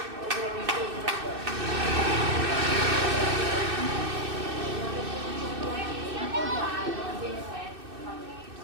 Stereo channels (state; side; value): late; left; 2.6 ms